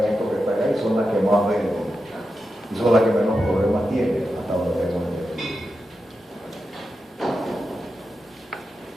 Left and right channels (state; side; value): normal; both; correlation 0.89